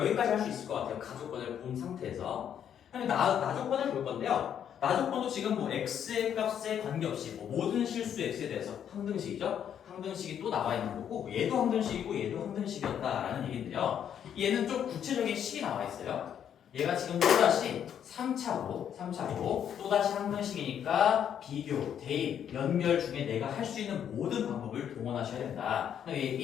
할 수 있을 것 같아요. 가조건을 본 상태에서. 나조건을 볼 건데요. 나조건도 지금 뭐 x의 값에 관계없이 뭐 모든 실수 x에 대해서 항등식이죠. 항등식이 또 나와 있는 거고 얘도 항등식이고 얘도 항등식이었다라는 얘기인데요. 얘는 좀 구체적인 식이 나와 있어요. 얘가 지금 또다시 3차로 또다시 항등식이니까 비교, 대입, 연결 중에 내가 할 수 있는 모든 방법을 동원하셔야 된다. 얘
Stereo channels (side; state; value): right; quieter; 9.1 dB